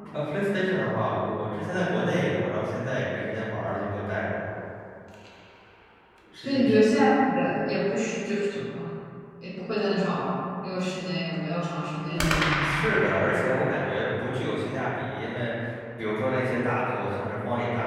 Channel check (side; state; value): both; identical; correlation 1.00